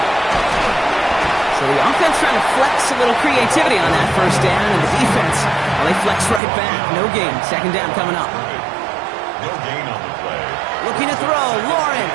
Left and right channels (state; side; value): drops out; left; at 6.4 s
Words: So the offense trying to flex a little creativity on that 1st down, and the defense, well, they flex right back. No gain. 2nd down coming up. No gain on the play. Looking to throw.